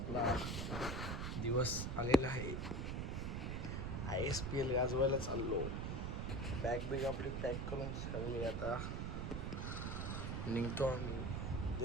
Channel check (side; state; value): right; noise; rumble, 2 dB below the sound